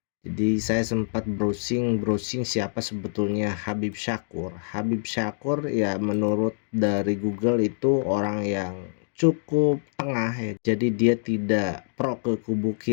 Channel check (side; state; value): right; silent; digital silence